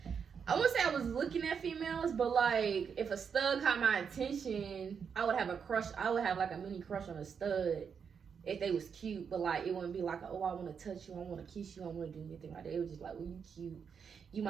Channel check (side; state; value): left; quieter; 6.7 dB